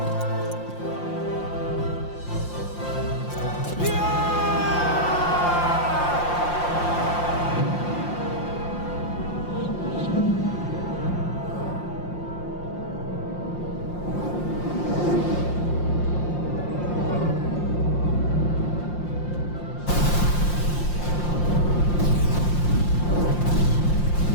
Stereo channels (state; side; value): late; right; 5.7 ms